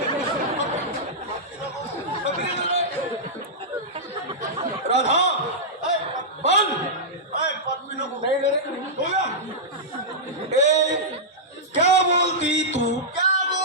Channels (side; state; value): both; normal; correlation -0.11